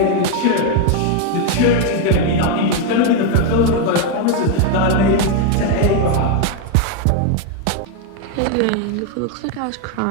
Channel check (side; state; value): both; different; correlation 0.01